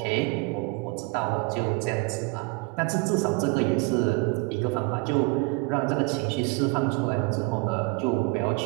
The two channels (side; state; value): left; quieter; 28.4 dB